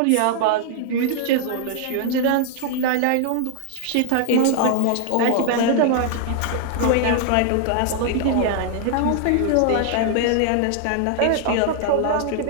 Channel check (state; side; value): different; both; correlation 0.00